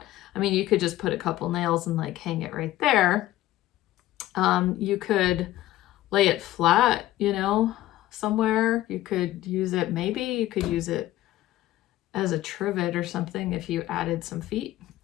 I mean, you could just put a couple nails and like hang it right there. You could lay it flat, somewhere. You could use it, maybe you could use it as a trivet or something if you added some feet.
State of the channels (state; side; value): quieter; right; 15.1 dB